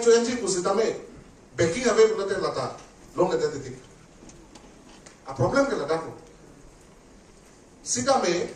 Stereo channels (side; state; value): both; identical; correlation 1.00